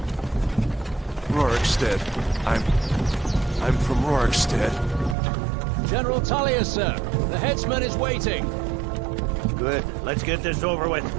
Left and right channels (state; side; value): drops out; left; at 5.2 s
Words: Rorikstead. I'm from Rorikstead. General Tullius, sir. The headsman is waiting. Good. Let's get this over with.